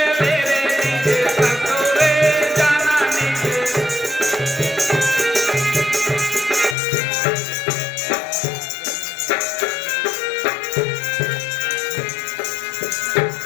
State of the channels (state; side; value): drops out; right; at 6.8 s